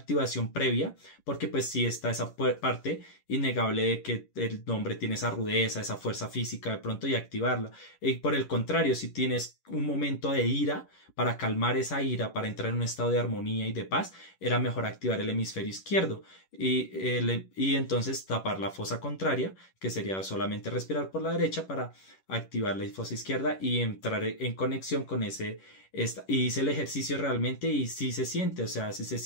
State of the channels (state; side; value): late; right; 11 ms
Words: previa, porque pues sí está esa parte innegable de que el hombre tiene esa rudeza, esa fuerza física de pronto y activarla. Y por el contrario, si tienes un momento de ira, para calmar esa ira, para entrar en un estado de armonía y de paz, era mejor activar el hemisferio izquierdo y entonces tapar la fosa contraria, que sería solamente respirar por la derecha para activar la fosa izquierda y entrar en conexión con y hice el ejercicio realmente y sí se siente, o sea, sí se